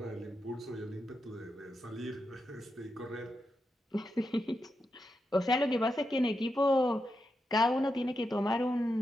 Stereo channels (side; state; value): both; normal; correlation 0.86